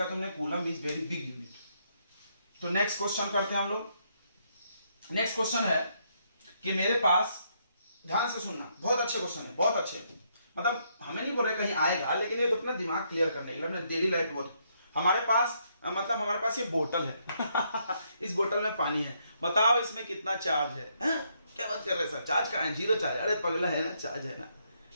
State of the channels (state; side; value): inverted; both; correlation -0.74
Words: तुमने, coulomb is very big unit. तो नेक्स्ट क्वेश्चन करते हैं हम लोग। नेक्स्ट क्वेश्चन है कि मेरे पास, ध्यान से सुनना, बहुत अच्छे क्वेश्चन है, बहुत अच्छे, मतलब हमें नहीं बोल रहे कहीं आएगा, लेकिन ये तो अपना दिमाग क्लियर करने के लिए, अपने डेली लाइफ बहुत। हमारे पास, मतलब हमारे पास ये बोतल है इस बोतल में पानी है, बताओ इसमें कितना चार्ज है? क्या बात कर रहे हैं सर, चार्ज का है, 0 चार्ज, अरे पगला है ना, चार्ज है ना,